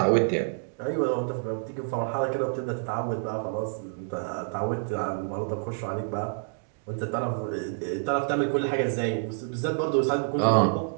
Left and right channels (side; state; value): left; silent; digital silence